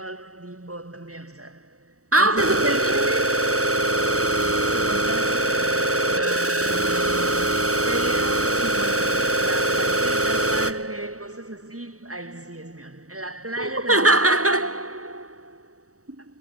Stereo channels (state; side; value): late; left; 0.65 ms